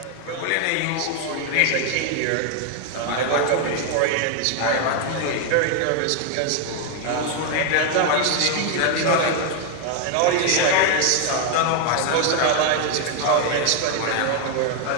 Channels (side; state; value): both; different; correlation 0.01